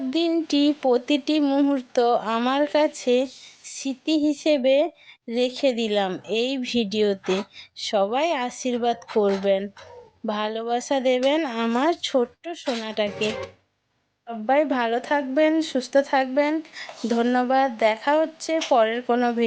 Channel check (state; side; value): identical; both; correlation 1.00